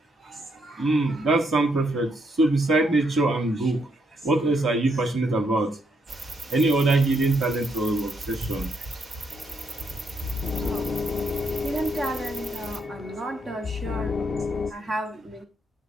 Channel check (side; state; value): both; normal; correlation 0.76